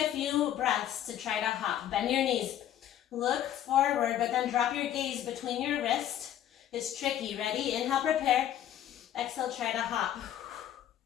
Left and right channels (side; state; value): right; quieter; 11.3 dB